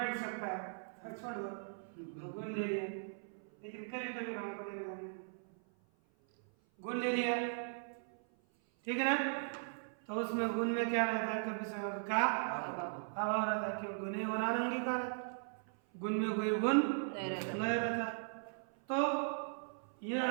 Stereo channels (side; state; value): left; silent; 52 dB below the other